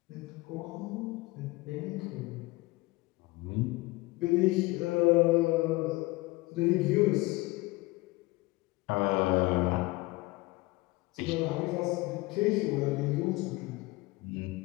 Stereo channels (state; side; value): quieter; right; 22.0 dB